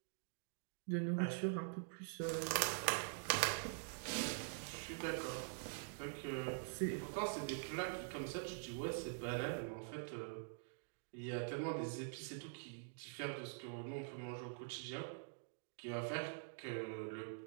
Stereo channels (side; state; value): left; silent; digital silence